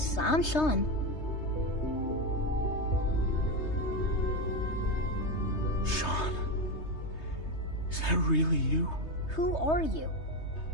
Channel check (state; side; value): late; right; 3.2 ms